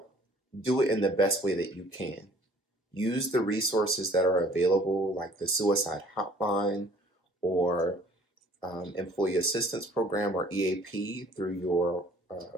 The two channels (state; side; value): normal; both; correlation 0.55